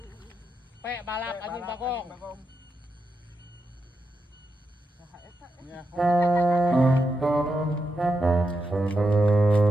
Pe balak anjing bagong.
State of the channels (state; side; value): normal; both; correlation 0.85